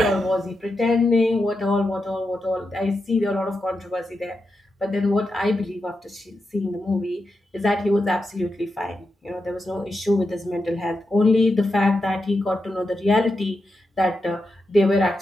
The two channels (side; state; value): both; normal; correlation 0.88